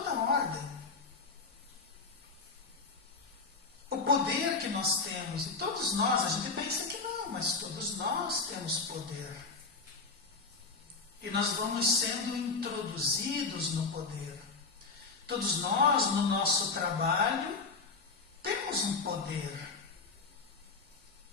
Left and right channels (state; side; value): quieter; right; 4.3 dB